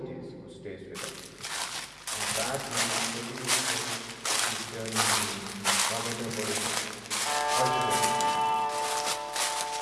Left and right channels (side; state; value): both; identical; correlation 1.00